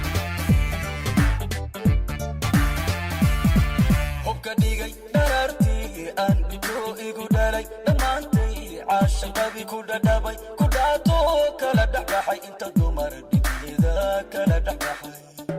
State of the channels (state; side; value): identical; both; correlation 1.00